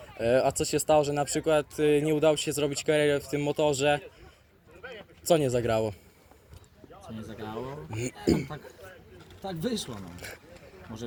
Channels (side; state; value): both; identical; correlation 1.00